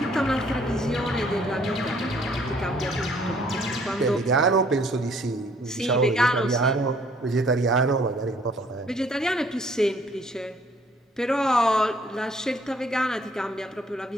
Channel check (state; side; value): normal; both; correlation 0.61